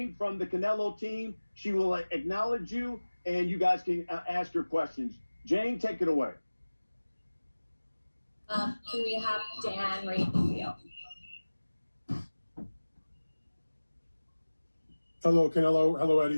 from the Canelo team, she will acknowledge you, and you guys can ask your questions. Jane, take it away. Can we have Dan Radio? Hello, Canelo. Hello,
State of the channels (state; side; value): inverted; both; correlation -1.00